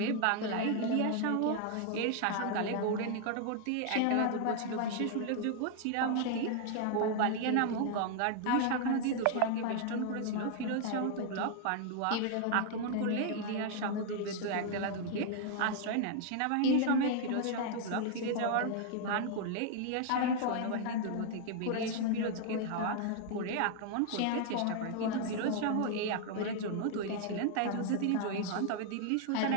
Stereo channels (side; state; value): both; different; correlation 0.00